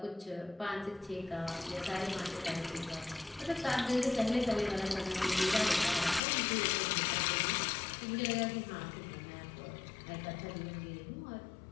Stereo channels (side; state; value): right; drops out; at 6.2 s